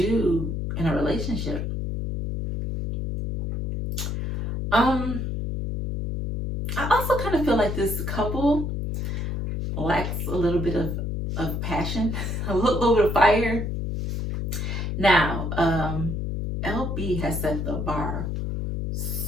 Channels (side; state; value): left; noise; hum, 2 dB below the sound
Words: in a relationship. I also kind of feel like this couple lacks a little bit of passion, a little bit of fire. Now, LB has set the bar